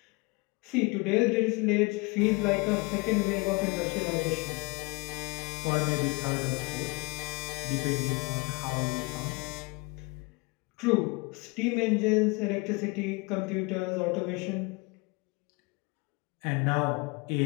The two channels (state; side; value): quieter; right; 27.8 dB